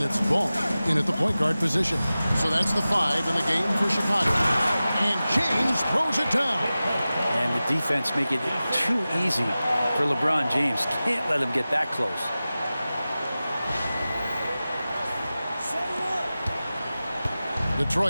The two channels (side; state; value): both; inverted; correlation -0.96